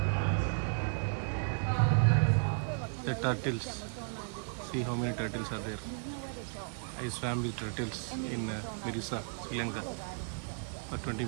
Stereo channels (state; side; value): silent; left; 55 dB below the other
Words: The turtles. See how many turtles are there. I swam with turtles in Mirisa, Sri Lanka for 20